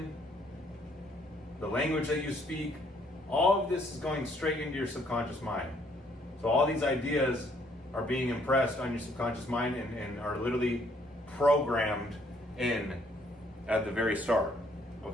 the language that you speak, all of this is going straight into your subconscious mind. So all these ideas are being impressed on your subconscious mind and are literally programmed in at the very start.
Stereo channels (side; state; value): both; normal; correlation 0.66